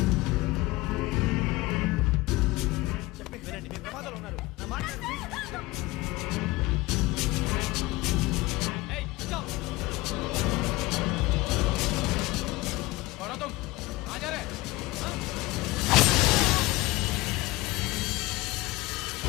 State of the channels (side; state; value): right; quieter; 20.3 dB